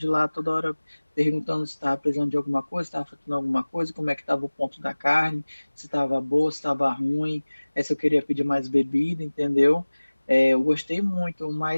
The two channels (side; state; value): both; inverted; correlation -1.00